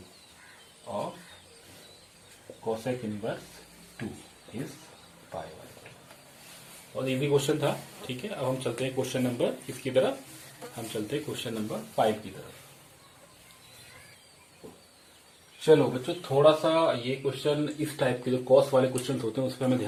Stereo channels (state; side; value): identical; both; correlation 1.00